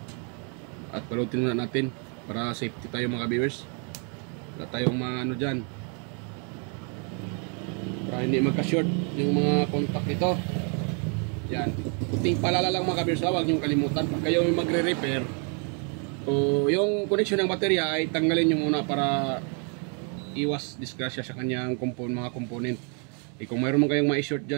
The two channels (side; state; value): left; quieter; 38.8 dB